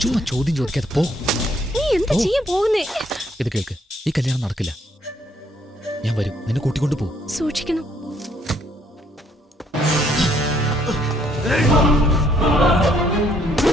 ചുമ്മാ ചോദ്യം ചോദിക്കാതെ പോ. നീ എന്താ ചെയ്യാൻ പോകുന്നേ? ഇത് കേൾക്ക്, ഈ കല്യാണം നടക്കില്ല. ഞാൻ വരും, നിന്നെ കൂട്ടിക്കൊണ്ട് പോ. സൂക്ഷിക്കണം.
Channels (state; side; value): normal; both; correlation 0.68